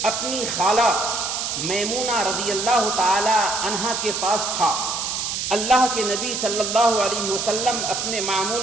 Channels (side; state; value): right; noise; hiss, 2 dB below the sound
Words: اپنی خالہ میمونہ رضی اللہ تعالی عنہا کے پاس تھا۔ اللہ کے نبی صلی اللہ علیہ وسلم اپنے